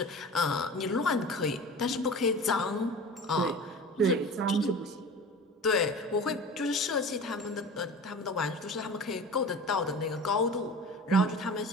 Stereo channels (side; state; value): both; normal; correlation 0.36